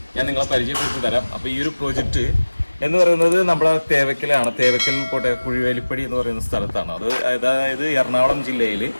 ഞാൻ നിങ്ങളെ പരിചയപ്പെടുത്തി തരാം. അപ്പോൾ ഈ ഒരു പ്രോജക്റ്റ് എന്ന് പറയുന്നത് നമ്മുടെ തേവക്കലാണ്. തേവക്കൽ കുഴിവേലിപ്പടി എന്ന് പറയുന്ന സ്ഥലത്താണ്. അതായത് എറണാകുളം ജില്ലയിൽ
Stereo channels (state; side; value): inverted; both; correlation -1.00